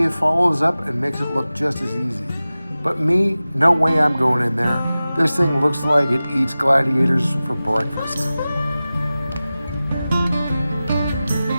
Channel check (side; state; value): both; inverted; correlation -0.96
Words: follows up and makes it look just as easy. But me, no way I'm going in there. This thing looks like it eats gladiators for breakfast.